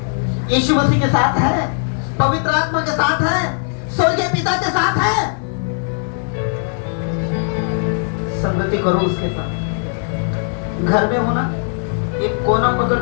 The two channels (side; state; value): right; silent; 56 dB below the other